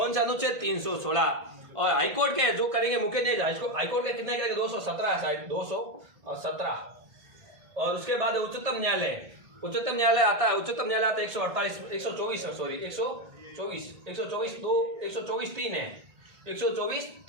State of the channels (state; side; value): late; left; 1.8 ms